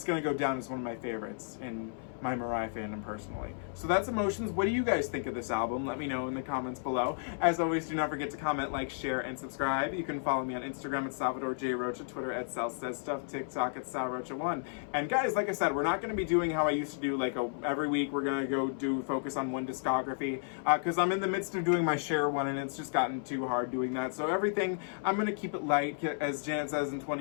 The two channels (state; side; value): silent; right; 56 dB below the other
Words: going to go down as one of my favorites in my Mariah fandom personally. So that's Emotions. What do you guys think of this album? Let me know in the comments below. As always, do not forget to comment, like, share, and subscribe. You can follow me on Instagram at Salvador J. Rocha, Twitter at Sal Says Stuff, TikTok at SalRocha1. And guys, like I said, we're not going to be doing how I used to do, like every week we're going to go focus on one discography, because I'm in the midst of doing my share one and it's just gotten too hard doing that. So everything, I'm going to keep it light, as Janet says in